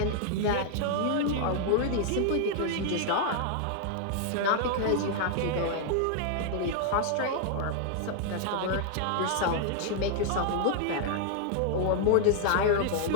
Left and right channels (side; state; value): both; different; correlation 0.00